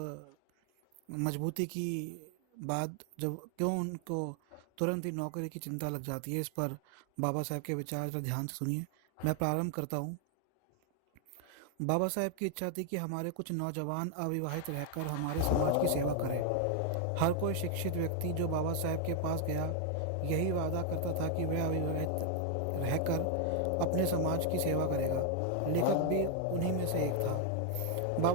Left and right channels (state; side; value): different; both; correlation 0.00